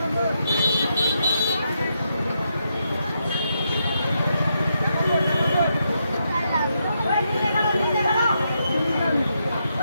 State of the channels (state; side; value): inverted; both; correlation -0.80